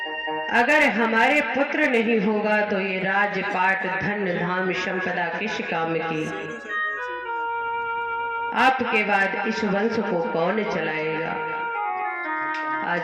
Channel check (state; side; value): identical; both; correlation 1.00